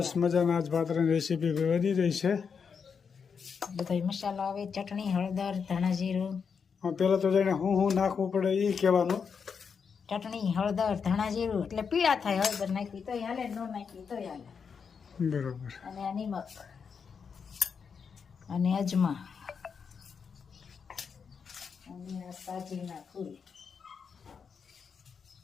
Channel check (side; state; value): right; quieter; 6.2 dB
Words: મજાના આજ પાત્રાની રેસીપી વધી રહી છે। બધા मसाला આવે, चटणी, हळदर, धाणा जीરું। પેલા તો જાણે હું નાખવું પડે એ કહેવાનું। चटणी, हळदर, धाणा जीરું એટલે પીળા થાય। હળદર નાખી તોય હાલે, ન નાખી તોય હાલે। બરોબર। અને આ નિમક અને અજમા અને આ સાજીના ફૂલ